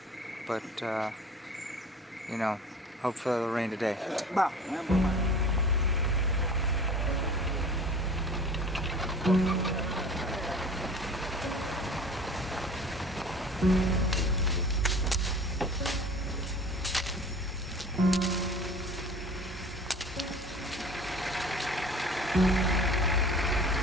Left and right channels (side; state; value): both; normal; correlation 0.43